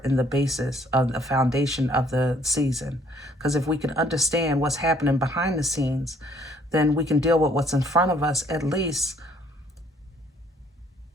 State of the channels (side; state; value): both; normal; correlation 0.62